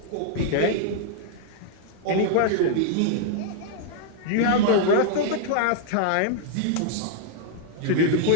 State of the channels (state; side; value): different; both; correlation -0.01